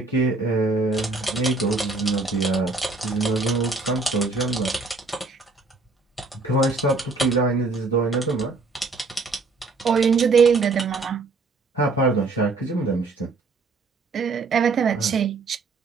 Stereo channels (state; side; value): quieter; left; 3.8 dB